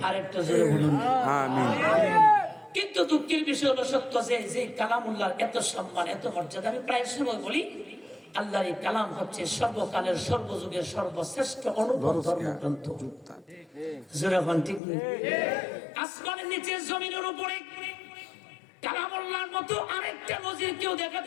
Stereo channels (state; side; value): drops out; right; at 14.8 s